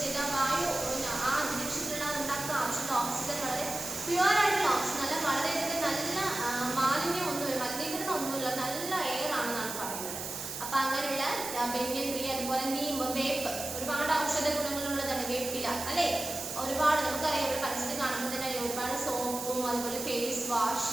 ചെയ്ത വായു ആ അന്തരീക്ഷത്തിലുള്ള ഉണ്ടാക്കുന്ന ആവശ്യമുള്ള ഓക്സിജൻ വളരെ പ്യുവർ ആയിട്ടുള്ള ഓക്സിജൻ, നല്ല വളരെയധികം നല്ല മലിനീകരണം ഒന്നുമില്ല, നല്ല എയർ ആണെന്നാണ് പറയുന്നത്. അപ്പൊ അങ്ങനെയുള്ള banyan tree, അതുപോലെ നീം, വേപ്പ് ഒരുപാട് ഔഷധ ഗുണങ്ങളുള്ളതാണ് വേപ്പില അല്ലെ. ഒരുപാട് നമുക്കറിയാം, ഇവിടെ പരസ്യത്തിൽ കാണുമ്പോൾ തന്നെ ഒരുപാട് സോപ്പും അതുപോലെ ഫേസ്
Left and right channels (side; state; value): right; noise; hiss, 6 dB below the sound